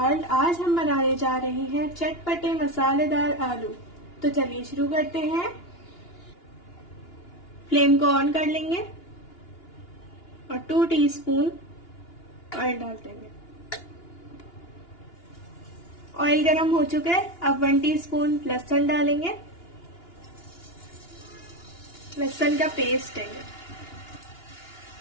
आज हम बनाने जा रहे हैं चटपटे मसालेदार आलू। तो चलिए शुरू करते हैं। फ्लेम को ऑन कर लेंगे और 2 टीस्पून ऑयल डाल देंगे। ऑयल गरम हो चुका है। अब 1 टीस्पून लहसुन डालेंगे। लहसुन का पेस्ट है।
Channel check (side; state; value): right; late; 2.9 ms